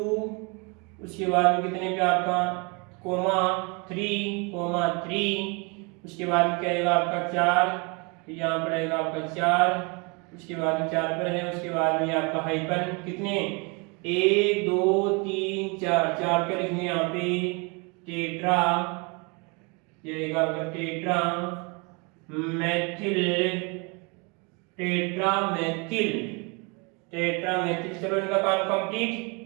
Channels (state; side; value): quieter; left; 31.1 dB